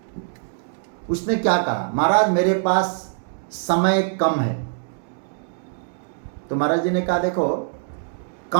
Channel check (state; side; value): silent; left; digital silence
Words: उसने क्या कहा, महाराज मेरे पास समय कम है। तो महाराज जी ने कहा देखो,